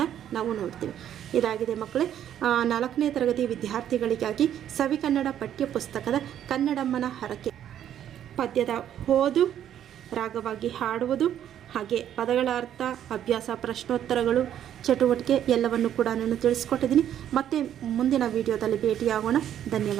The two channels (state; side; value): quieter; left; 10.5 dB